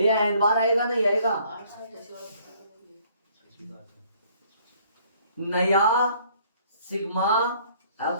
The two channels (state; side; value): inverted; both; correlation -0.61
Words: n बार आएगा, नहीं आएगा? नया सिग्मा